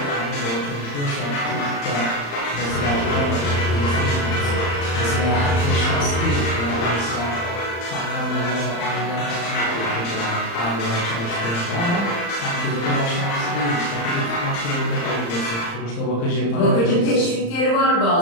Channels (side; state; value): right; late; 35 ms